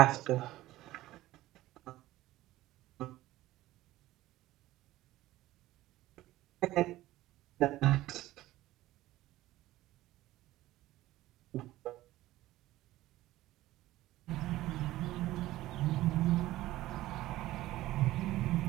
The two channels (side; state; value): left; quieter; 16.2 dB